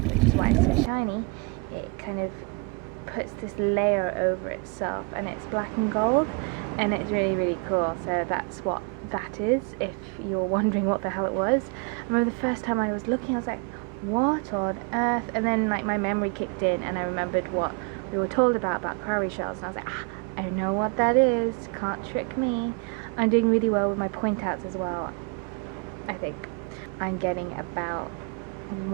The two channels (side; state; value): left; quieter; 31.5 dB